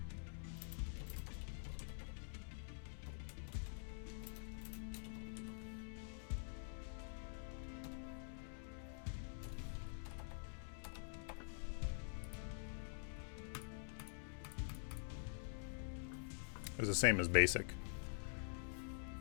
It was the same as basic.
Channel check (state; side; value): silent; right; digital silence